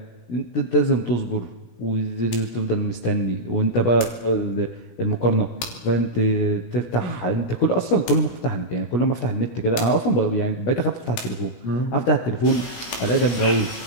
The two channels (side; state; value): right; late; 17 ms